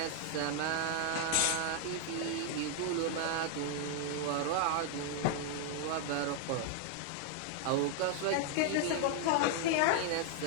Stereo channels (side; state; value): both; different; correlation 0.00